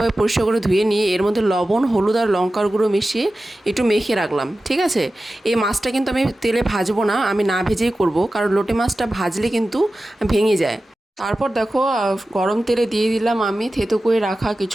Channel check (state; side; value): normal; both; correlation 0.94